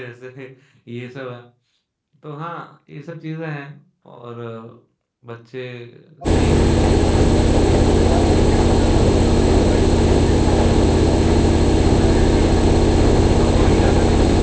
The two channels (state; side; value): identical; both; correlation 1.00